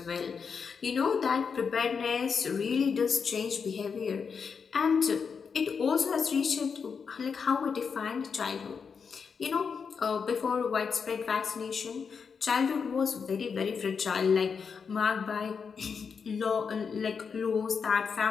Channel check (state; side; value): quieter; right; 6.0 dB